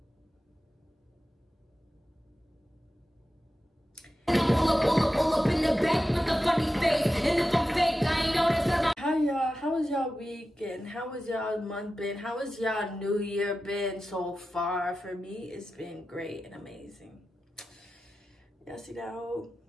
How y'all? How was y'all weekend? How was y'all month been? How was y'all new year been so far? For me, it's been great and amazing. Y'all see that hole?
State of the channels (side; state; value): both; normal; correlation 0.93